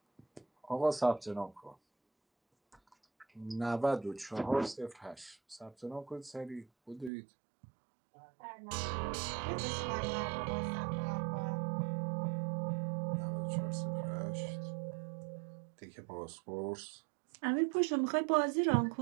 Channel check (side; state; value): left; drops out; at 7.1 s